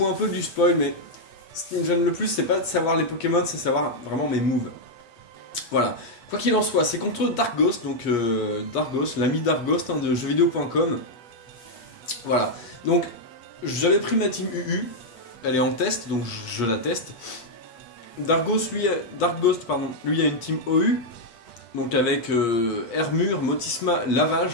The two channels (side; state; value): right; late; 8.3 ms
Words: un peu du spoil, mais ce qui me gêne le plus, c'est pas de savoir les Pokémon, c'est savoir vraiment mes moves. Voilà. Quoi qu'il en soit, c'est contre Darkghost, donc Darkghost, l'ami Darkghost hein, de jeuxvideo.com. Voilà. Donc, j'avais pris ma team UU, elle est en test, donc je la teste. Darkghost, lui a une team OU, donc avec Hermure, Motisma,